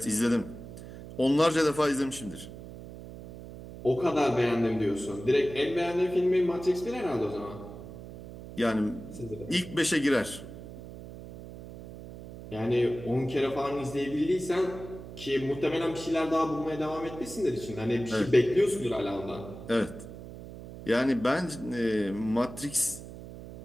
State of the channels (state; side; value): noise; right; hum, 13 dB below the sound